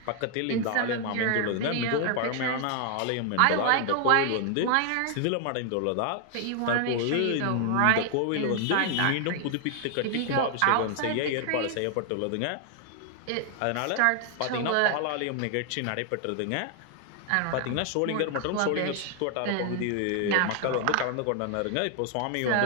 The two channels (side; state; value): both; different; correlation 0.00